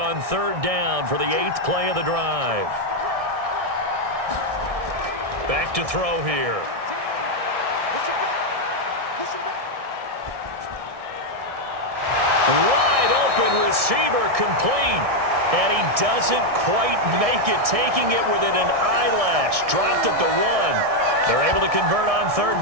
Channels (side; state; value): left; late; 1.6 ms